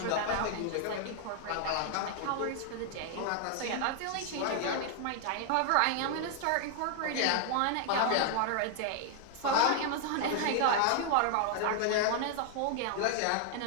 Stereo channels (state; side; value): different; both; correlation 0.00